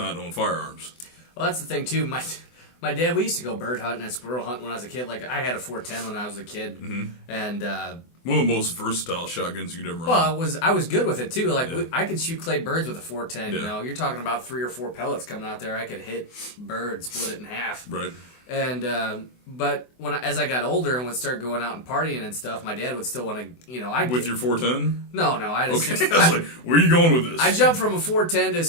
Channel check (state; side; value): late; right; 24 ms